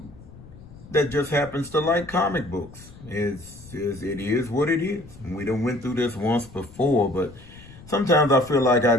that just happens to like comic books. It is what it is. And we done went through this once before, but sometimes I feel like I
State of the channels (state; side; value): noise; left; rumble, 19 dB below the sound